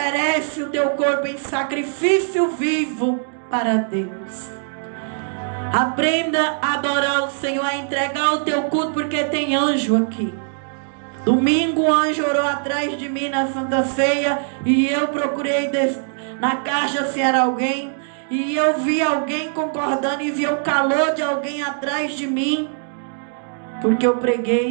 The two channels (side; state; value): left; silent; digital silence